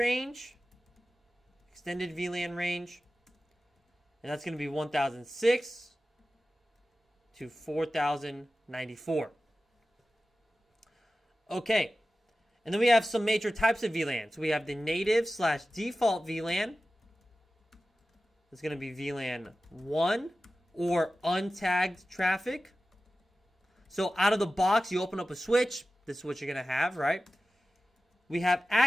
extended VLAN range, and that's going to be 1006 to 4094. Okay, and then we have some major types of VLANs. We have the native/default VLAN. It's going to be VLAN 1 or untagged traffic. So out of the box, you open up a switch. This is what you're going to have, right? We have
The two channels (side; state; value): both; normal; correlation 0.95